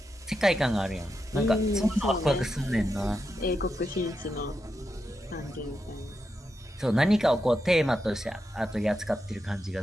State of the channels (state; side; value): normal; both; correlation 0.86